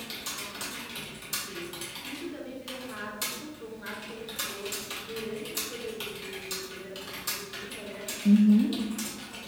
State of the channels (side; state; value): both; identical; correlation 1.00